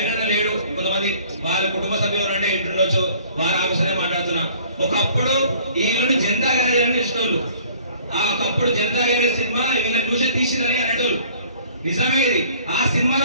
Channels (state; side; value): inverted; both; correlation -0.53